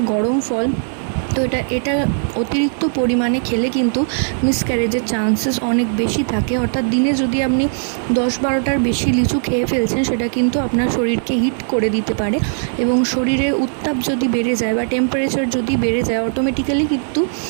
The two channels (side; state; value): left; silent; digital silence